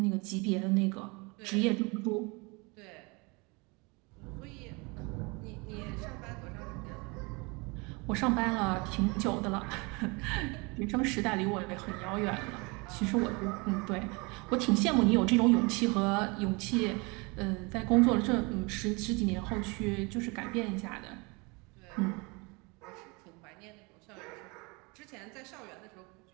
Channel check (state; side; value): quieter; left; 28.1 dB